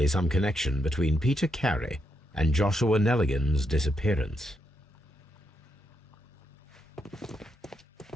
some connection between Peter Carey and Joshua Nelligan's disappearance.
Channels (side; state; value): both; normal; correlation 0.80